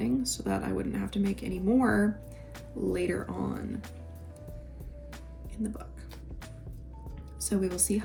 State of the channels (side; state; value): both; identical; correlation 1.00